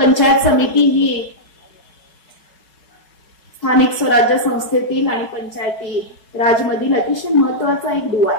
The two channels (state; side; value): late; right; 4.6 ms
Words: समिती ही स्थानिक स्वराज्य संस्थेतील आणि पंचायती राजमधील अतिशय महत्वाचा एक दुवा